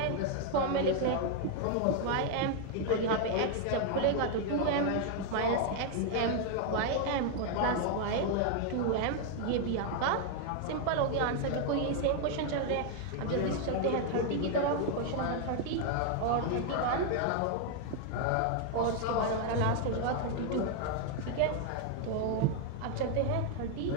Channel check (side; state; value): both; different; correlation 0.00